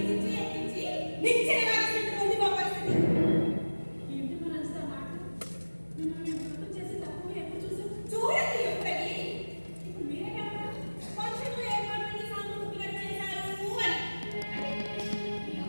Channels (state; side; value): inverted; both; correlation -1.00